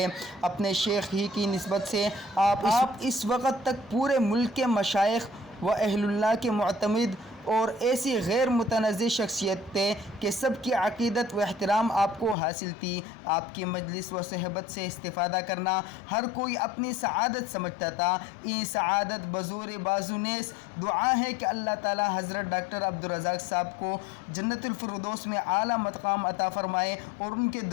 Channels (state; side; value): drops out; right; at 12.4 s